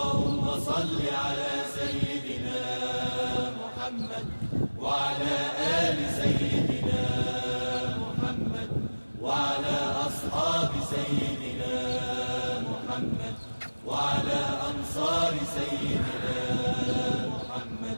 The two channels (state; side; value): inverted; both; correlation -1.00